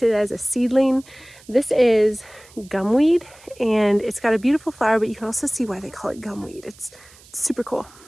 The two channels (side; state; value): right; noise; hiss, 25 dB below the sound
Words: it as a seedling. This is gumweed, and it's got a beautiful flower, but you can also see why they call it gumweed. It's super cool.